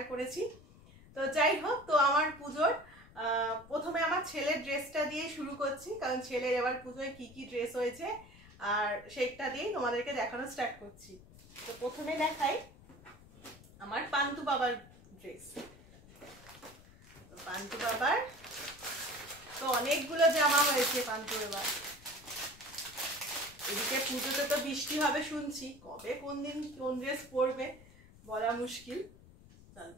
করেছি। তো যাই হোক, তো আমার পুজোর প্রথমে আমার ছেলের ড্রেসটা দিয়ে শুরু করছি, কারণ ছেলের এবার পুজোয় কি কি ড্রেস হয়েছে আর সেইটা দিয়েই তোমাদেরকে দেখানো স্টার্ট করছি। তো প্রথমে দেখাই আমার পান্টু বাবার ড্রেস। তো পান্টু বাবার তো অনেকগুলো জামা হয়েছে পান্টু বাবার। এদিকে পুজোতে তো বৃষ্টি হবে শুনছি, কবে কোন দিন কোন ড্রেস পরবে বলা মুশকিল।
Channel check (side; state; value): left; noise; rumble, 22 dB below the sound